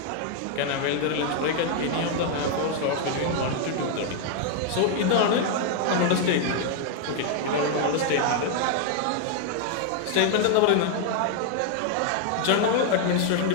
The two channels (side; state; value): both; different; correlation 0.00